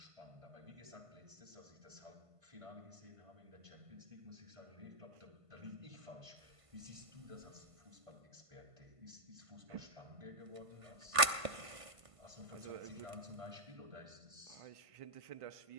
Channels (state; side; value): late; left; 1.5 ms